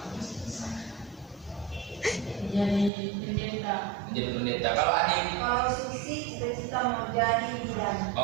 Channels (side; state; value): left; drops out; at 2.9 s